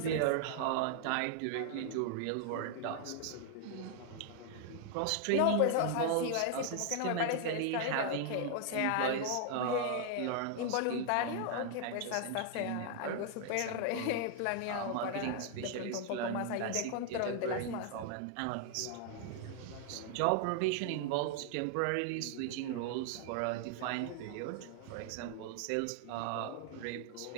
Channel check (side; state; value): both; different; correlation 0.00